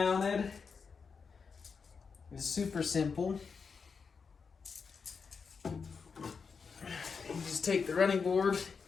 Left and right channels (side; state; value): right; quieter; 5.5 dB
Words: is super simple. You just take the running board,